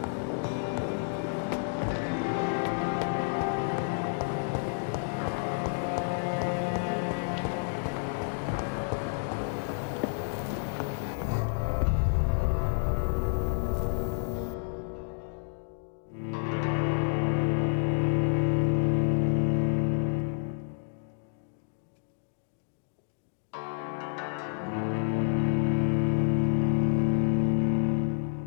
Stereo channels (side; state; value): right; silent; digital silence